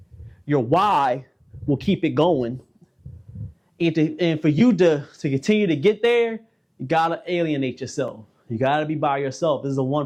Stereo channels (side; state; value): both; identical; correlation 1.00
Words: Your why will keep it going. And for you to continue to get there, you gotta alienate yourself. You gotta be by yourself. This is a